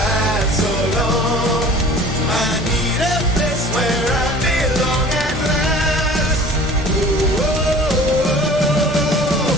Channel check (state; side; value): normal; both; correlation 0.45